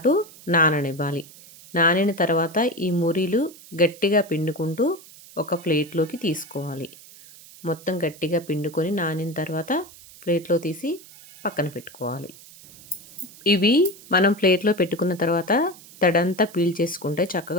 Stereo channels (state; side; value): noise; right; hiss, 20 dB below the sound